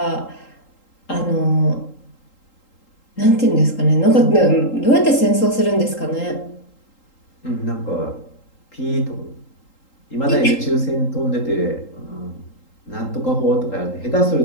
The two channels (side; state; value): right; late; 3.8 ms